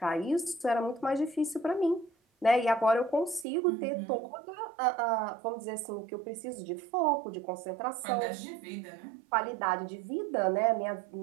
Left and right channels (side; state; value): left; drops out; at 3.5 s